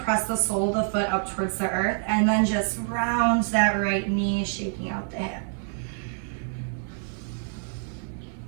the sole of the foot up towards the earth, and then just round that right knee, shaking out the hip.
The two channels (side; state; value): left; silent; 60 dB below the other